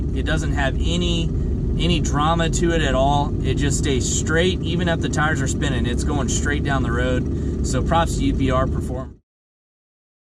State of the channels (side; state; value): both; identical; correlation 1.00